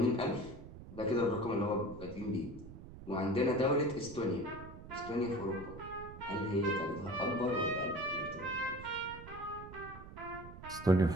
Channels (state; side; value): noise; right; rumble, 14 dB below the sound